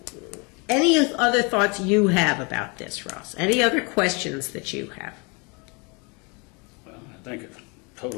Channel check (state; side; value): quieter; right; 31.1 dB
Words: Any other thoughts you have about this, Ross? Any other questions that you have? Well, I think it's